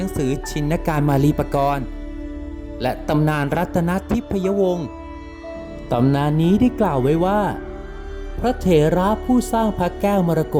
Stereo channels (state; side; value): identical; both; correlation 1.00